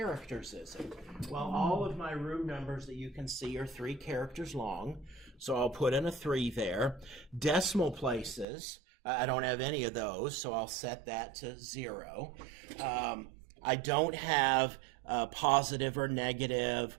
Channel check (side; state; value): left; drops out; at 8.5 s